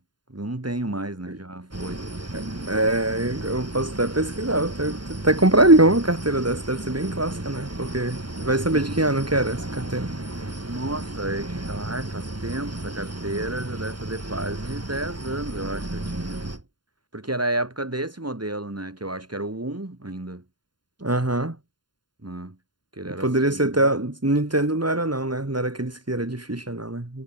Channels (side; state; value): left; late; 0.71 ms